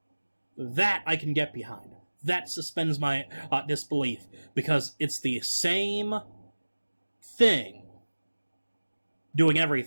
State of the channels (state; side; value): inverted; both; correlation -1.00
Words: That I can get behind. That suspends my disbelief, because it's the same thing doing